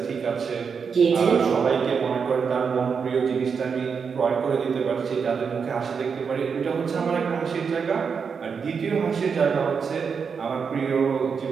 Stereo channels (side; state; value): left; quieter; 6.0 dB